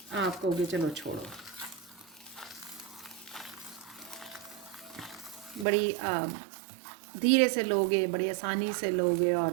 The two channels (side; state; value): left; drops out; at 5.7 s